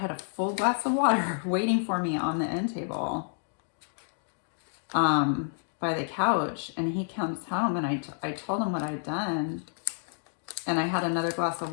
a full glass of water waiting for me on the end table by the couch. And he comes home and I told him what I'd done. And I had another glass of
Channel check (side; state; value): right; silent; digital silence